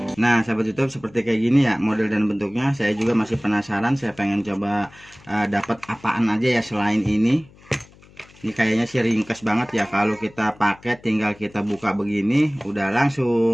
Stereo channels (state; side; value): noise; left; hum, 25 dB below the sound